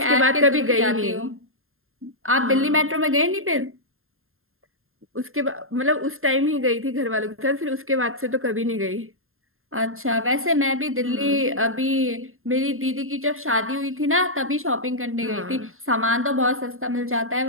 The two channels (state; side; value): late; left; 0.61 ms